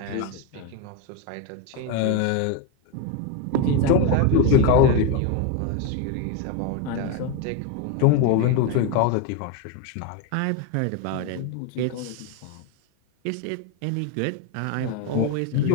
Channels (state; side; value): different; both; correlation 0.02